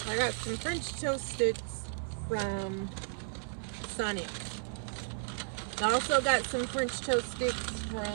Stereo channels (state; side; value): silent; left; 55 dB below the other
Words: I got some French toast sticks from Sonic. I also got some French toast sticks